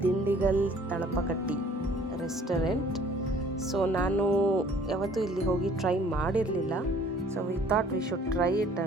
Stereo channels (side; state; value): both; normal; correlation 0.55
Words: ದಿಂಡಿಗಲ್ ತಳಪಕಟ್ಟಿ ರೆಸ್ಟೋರೆಂಟ್. ಸೊ ನಾನು ಯಾವತ್ತೂ ಇಲ್ಲಿ ಹೋಗಿ ಟ್ರೈ ಮಾಡಿರಲಿಲ್ಲ. So we thought we should try it